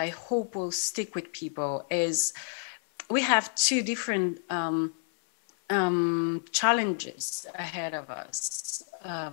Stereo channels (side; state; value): right; silent; digital silence